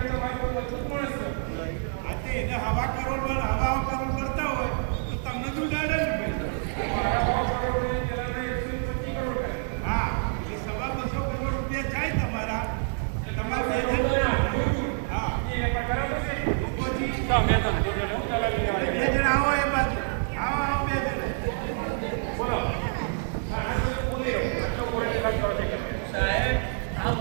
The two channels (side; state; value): left; silent; 57 dB below the other